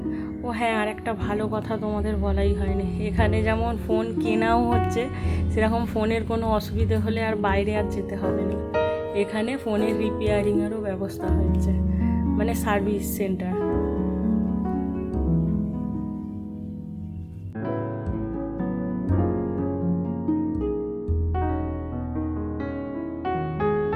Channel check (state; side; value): identical; both; correlation 1.00